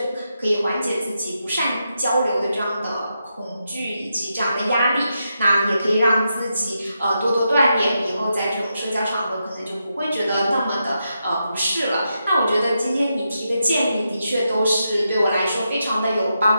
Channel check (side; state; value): both; inverted; correlation -0.85